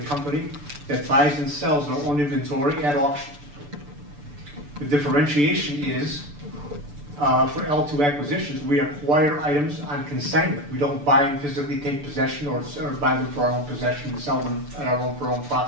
company that buys and sells our own inventory at auction. The differentiation is, for L2 acquisitions, we acquire items on consignment. We don't buy and physically take possession or buy them for our own possession and sell them at our own for our own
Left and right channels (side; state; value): left; late; 6.9 ms